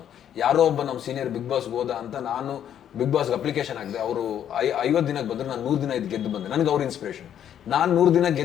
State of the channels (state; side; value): quieter; right; 9.9 dB